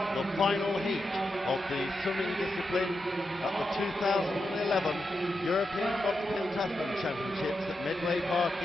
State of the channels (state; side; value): normal; both; correlation 0.87